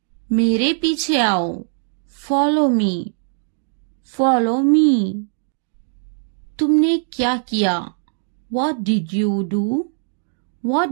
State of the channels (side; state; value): left; silent; digital silence